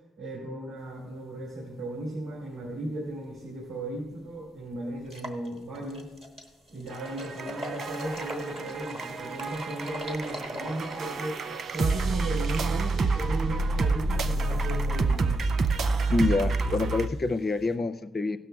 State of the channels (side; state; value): both; normal; correlation 0.83